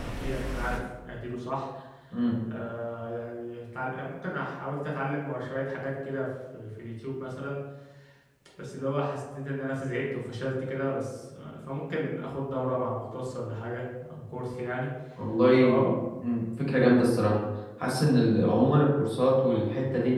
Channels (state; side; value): identical; both; correlation 1.00